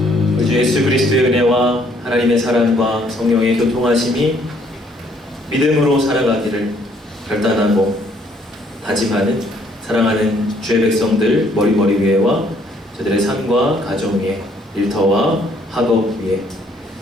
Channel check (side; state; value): both; normal; correlation 0.65